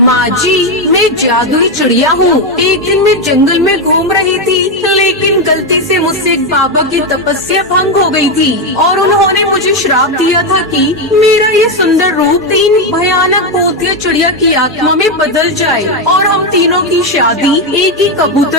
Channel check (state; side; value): normal; both; correlation 0.07